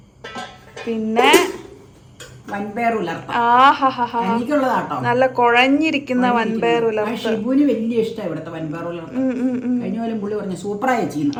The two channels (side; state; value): both; identical; correlation 1.00